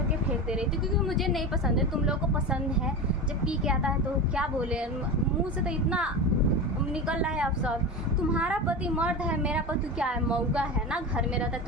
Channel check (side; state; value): both; normal; correlation 0.24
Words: फेंक दे रही थी, क्योंकि मुझे नहीं पसंद है। तुम लोगों को पसंद है, जब पी के आता है तो क्या बोले, मुँह से तो इतना निकल रहा है अब सब। तुम्हारा पति मर्द है, मेरा पति क्या है, मौगा है ना, घर में रहता है।